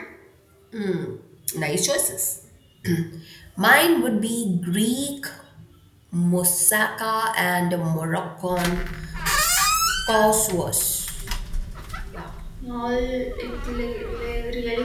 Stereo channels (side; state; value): both; identical; correlation 1.00